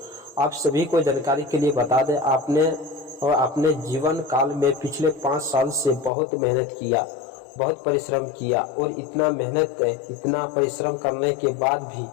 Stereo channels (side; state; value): right; drops out; at 6.1 s